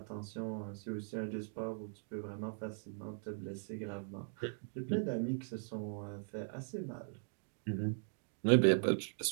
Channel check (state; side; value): silent; left; digital silence